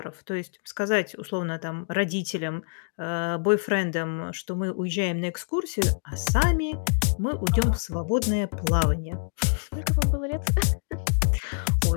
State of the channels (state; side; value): silent; right; digital silence